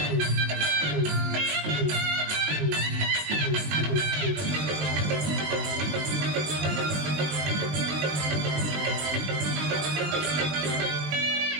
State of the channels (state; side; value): late; left; 20 ms